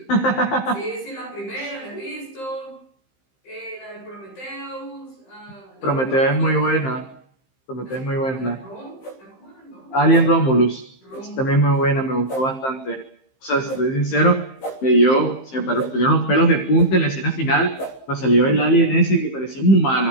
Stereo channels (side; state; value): right; late; 15 ms